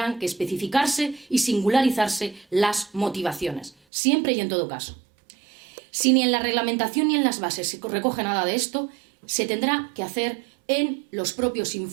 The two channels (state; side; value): drops out; left; at 3.7 s